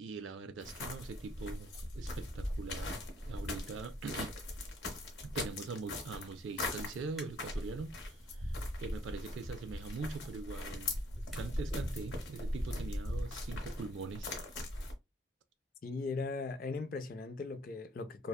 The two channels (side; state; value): both; normal; correlation 0.63